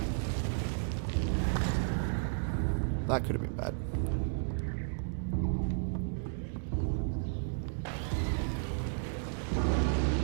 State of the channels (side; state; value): left; silent; digital silence